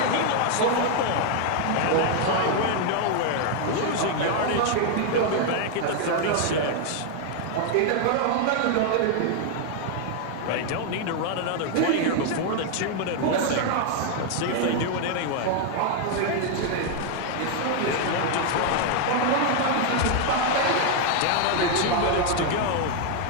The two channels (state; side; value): different; both; correlation 0.00